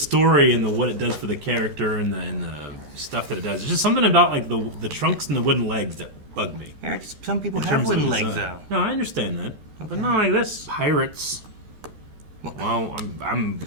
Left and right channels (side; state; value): left; late; 13 ms